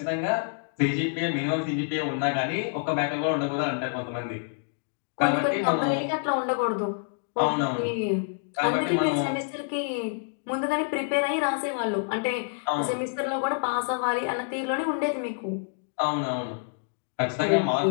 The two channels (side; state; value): right; silent; digital silence